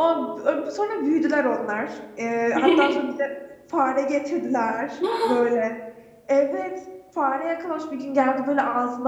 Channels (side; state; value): both; identical; correlation 1.00